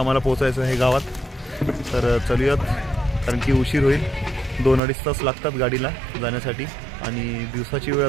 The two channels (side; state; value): left; drops out; at 4.8 s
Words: पोहोचायचं आहे गावात. तर चलूयात, कारण की उशीर होईल. 2-2.5 तास लागतात गाडीला जाण्यासाठी आणि दिवसाची वेळ